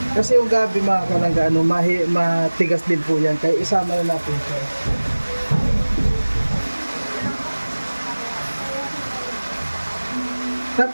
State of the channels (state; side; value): inverted; both; correlation -1.00